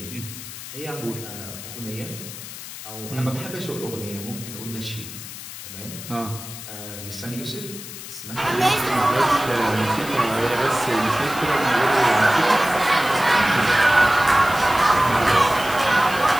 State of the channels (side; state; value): left; noise; hiss, 12 dB below the sound